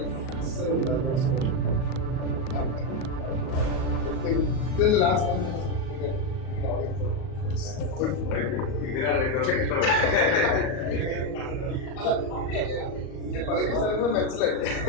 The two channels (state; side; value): late; right; 38 ms